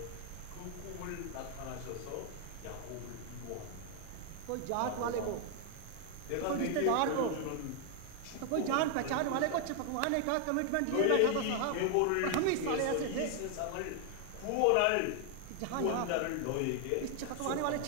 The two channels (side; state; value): both; different; correlation 0.00